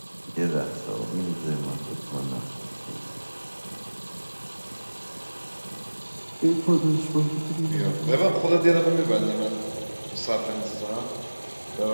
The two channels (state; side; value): inverted; both; correlation -1.00